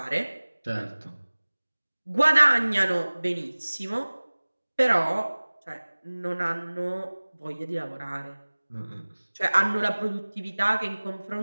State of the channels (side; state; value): both; inverted; correlation -1.00